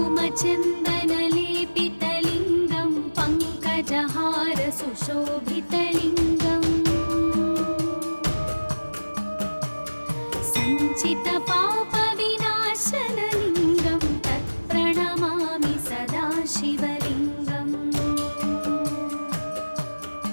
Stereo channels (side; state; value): both; inverted; correlation -1.00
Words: पङ्कजहारसुशोभितलिङ्गम् सञ्चितपापविनाशनलिङ्गं तत्प्रणमामि सदा शिवलिङ्गम्